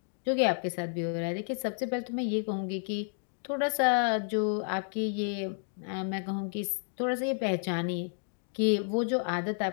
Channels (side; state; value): right; silent; digital silence